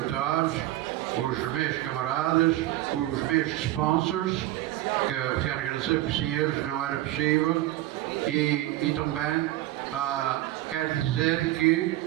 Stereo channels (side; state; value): left; quieter; 15.5 dB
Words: os meus camaradas, os meus sponsors, que quero agradecer porque sem eles não era possível, e também quero dizer que